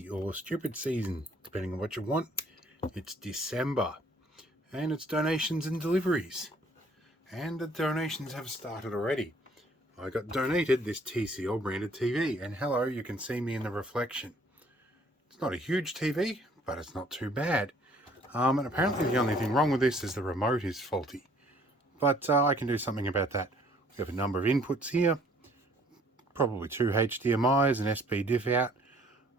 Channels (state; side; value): normal; both; correlation 0.60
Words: or stupid season, depending on what you want. It's December, and it's donations and deliveries. And the donations have started already. I got donated this TCL branded TV, and hello, you can see me in the reflection. It's not a huge TV, but it's not too bad. And apparently the only thing wrong with this is the remote is faulty. But I can do something about that. We have a number of inputs here. Probably 2 HDMIs, an SP diff out,